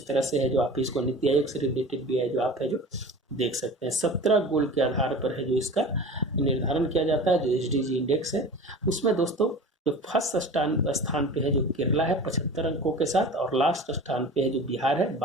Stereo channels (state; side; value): normal; both; correlation 0.37